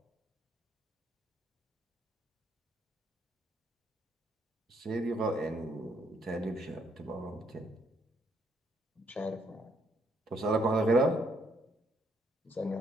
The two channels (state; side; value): normal; both; correlation 0.71